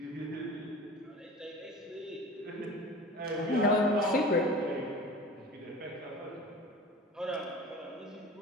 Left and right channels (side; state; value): both; normal; correlation 0.38